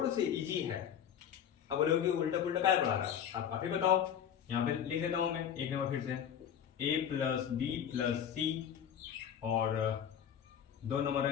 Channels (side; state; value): right; quieter; 8.9 dB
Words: से इजी है। अब बोलोगे उल्टा पुल्टा क्या पढ़ा रहा है, आप ही बताओ। यहाँ पे लिख देता हूं मैं एक नंबर फिर से, a प्लस बी प्लस सी और 2 नंबर